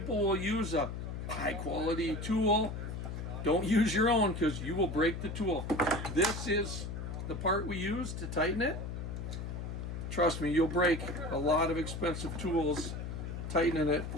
will use a high quality tool. Don't use your own because you will break the tool. This is the part we use to tighten it. Trust me, you'll break a lot of expensive tools tightening it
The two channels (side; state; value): left; noise; hum, 6 dB below the sound